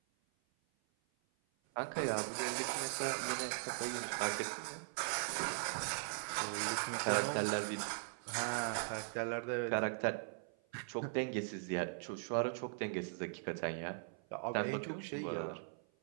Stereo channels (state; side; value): silent; left; 51 dB below the other